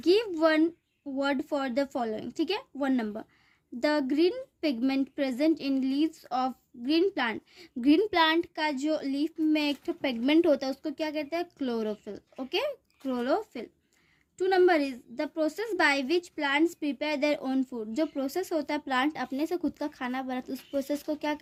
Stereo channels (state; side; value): identical; both; correlation 1.00